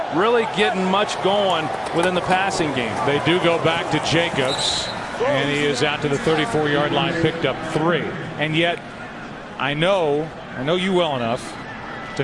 really getting much going within the passing game. They do go back to Jacobs, and he is out to the 34-yard line, picked up 3. And yet, I know you well enough to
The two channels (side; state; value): both; identical; correlation 1.00